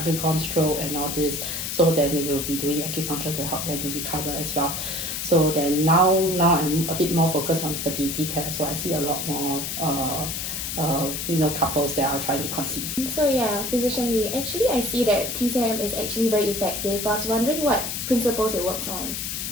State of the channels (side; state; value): left; noise; hiss, 4 dB below the sound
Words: stroke and all this. So then we will be doing acupuncture to help them to recover as well. So then now I'm a bit more focused on fertility care. So I see a lot more couples that are trying to conceive. So yeah, Physician Lee, actually I see that TCM is actually very effective. I was wondering what principles it works on.